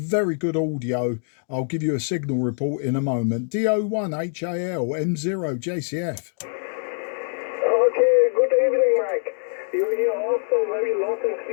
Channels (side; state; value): right; silent; digital silence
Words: good audio. I'll give you a signal report in a moment. DO1 HAL M0JCF. Okay, good evening, Mike. You're here also very loud and